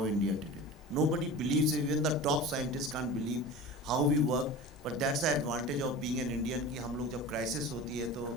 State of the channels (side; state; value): both; normal; correlation 0.34